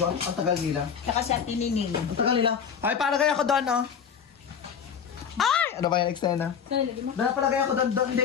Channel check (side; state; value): right; quieter; 7.3 dB